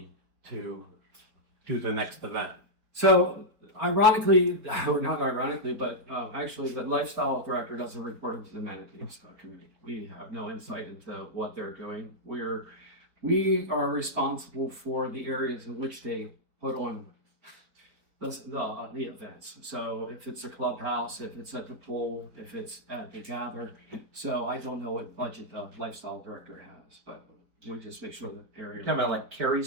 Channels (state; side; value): late; left; 4.4 ms